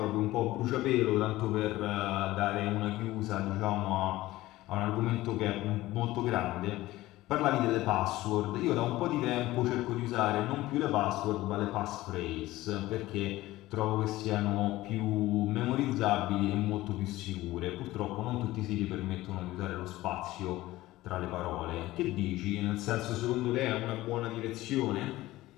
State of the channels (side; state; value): right; quieter; 17.2 dB